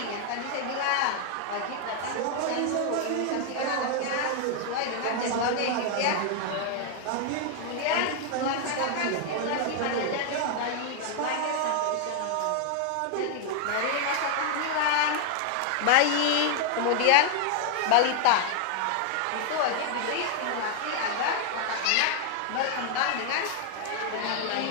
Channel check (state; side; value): different; both; correlation 0.00